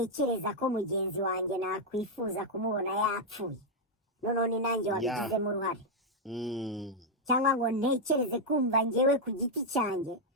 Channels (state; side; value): normal; both; correlation -0.01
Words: ko mugenzi wanjye nakwifuza kumubona yapfuye noneho ni nanjye wabigizemo uruhare, cyangwa ngo ntekereze kumva njyewe ku giti cyanjye